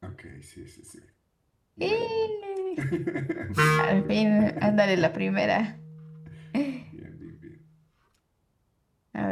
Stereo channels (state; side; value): identical; both; correlation 1.00